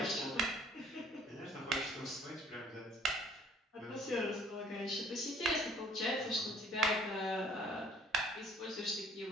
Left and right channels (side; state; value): both; normal; correlation 0.56